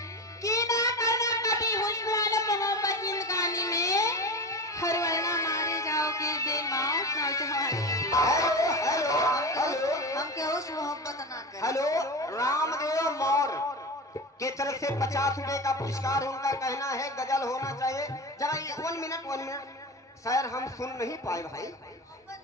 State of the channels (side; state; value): both; normal; correlation 0.26